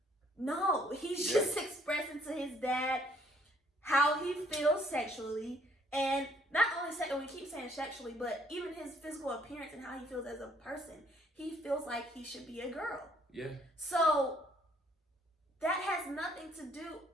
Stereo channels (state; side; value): normal; both; correlation 0.64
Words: no, he's just expressing to his dad how he feels sexually, and not only we keep saying sexually, but even his physical appearance and how he feels as a person. He feels like he should be a girl. Yeah. So that has nothing to do.